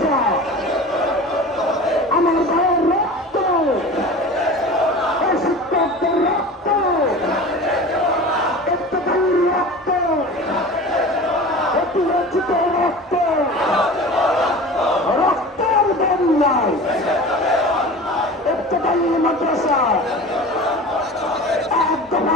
আমার ভাইয়ের রক্ত, শিক্ষকদের রক্ত, ইত্তেফাকের রক্ত, অতিরঞ্জিত রক্ত, রক্তের বন্যায় ইত্তেফাকের মাদ্রাসা এক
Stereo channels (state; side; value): normal; both; correlation 0.36